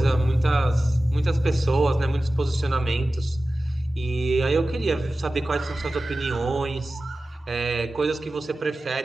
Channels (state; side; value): normal; both; correlation 0.95